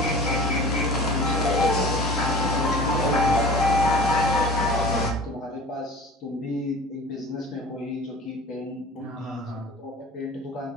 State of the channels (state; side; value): normal; both; correlation 0.40